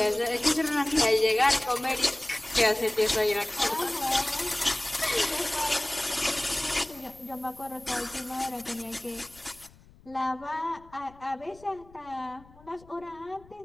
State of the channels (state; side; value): noise; left; rumble, 25 dB below the sound